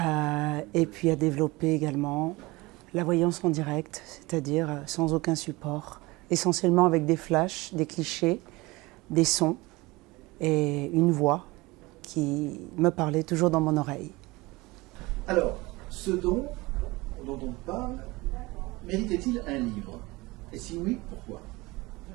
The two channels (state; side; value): quieter; left; 22.2 dB